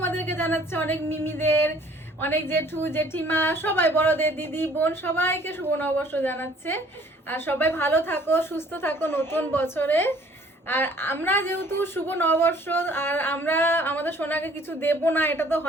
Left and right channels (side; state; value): both; normal; correlation 0.56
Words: জানাচ্ছে, অনেক মিমিদের, অনেক জেঠু জেঠিমা, সবাই, বড়দের, দিদি বোন, সবাইকে শুভ নববর্ষ জানাচ্ছে। আর সবাই ভালো থাকো, সুস্থ থাকো নতুন বছরে। আর আমরা যেহেতু শুভ নববর্ষ, আর আমরা আমাদের সোনাকে কিছু দেব না, এটা তো